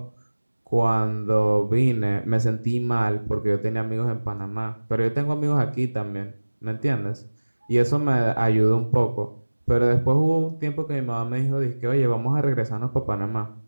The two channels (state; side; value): inverted; both; correlation -1.00